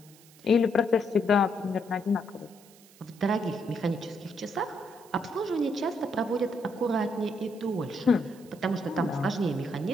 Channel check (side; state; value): right; noise; hiss, 25 dB below the sound